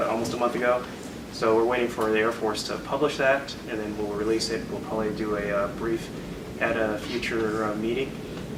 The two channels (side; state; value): both; identical; correlation 1.00